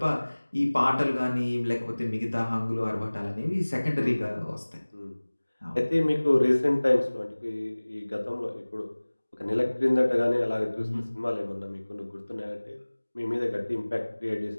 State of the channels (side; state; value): both; inverted; correlation -1.00